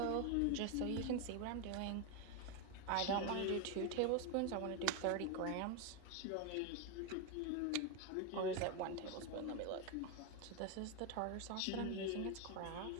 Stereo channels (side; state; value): both; different; correlation 0.01